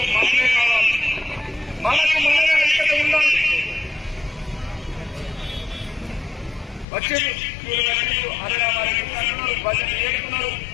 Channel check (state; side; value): drops out; right; at 6.9 s